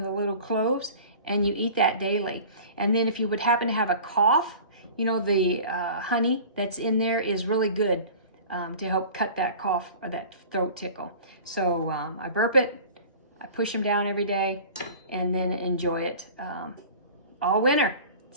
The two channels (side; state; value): both; inverted; correlation -0.41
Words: the little cloves and you eat that daily. And then if you would happen to have a cough, the honey that's in there is really good to help cut that cough or that throat tickle. So I burp it, I push them down every day, and then enjoy it all winter.